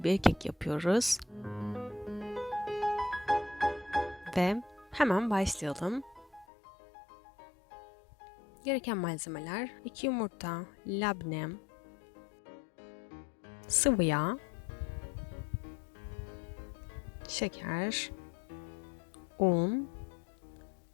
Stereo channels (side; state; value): right; drops out; at 6.5 s